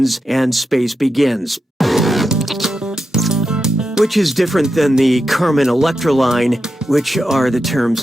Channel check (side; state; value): both; normal; correlation 0.88